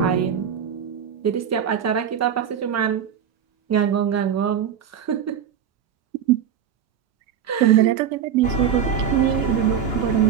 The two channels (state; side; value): quieter; left; 8.4 dB